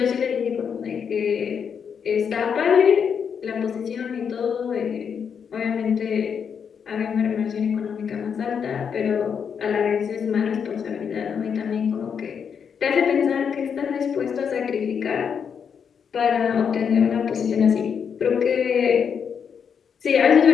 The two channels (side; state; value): right; quieter; 7.0 dB